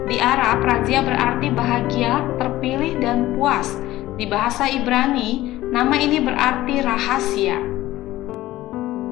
Di Arab, razia berarti bahagia, terpilih, dan puas. Di bahasa Ibrani, nama ini berarti rahasia.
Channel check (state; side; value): quieter; right; 16.0 dB